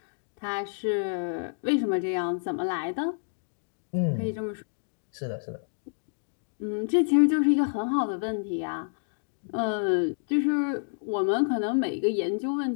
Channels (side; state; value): right; silent; digital silence